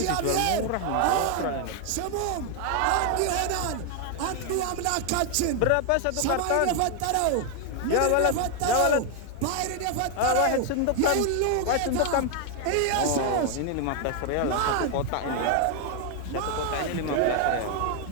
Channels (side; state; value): both; different; correlation 0.00